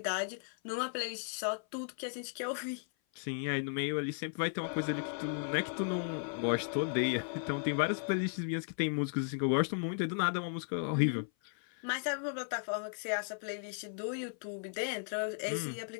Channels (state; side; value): silent; right; 54 dB below the other